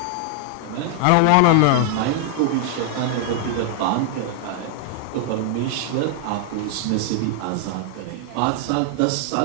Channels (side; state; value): both; different; correlation 0.00